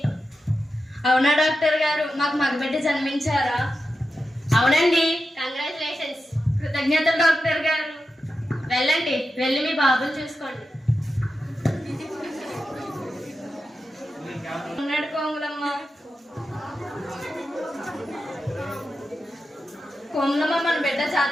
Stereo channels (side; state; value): both; normal; correlation 0.90